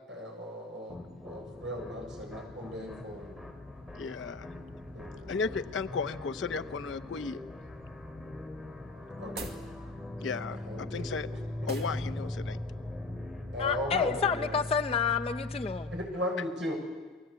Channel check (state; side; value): quieter; right; 3.6 dB